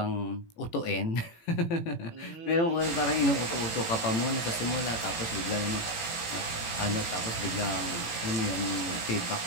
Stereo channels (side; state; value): right; late; 18 ms